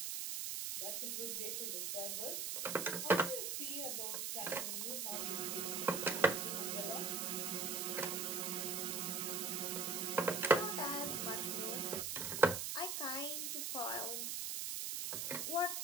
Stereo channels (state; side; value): noise; right; hiss, 1 dB below the sound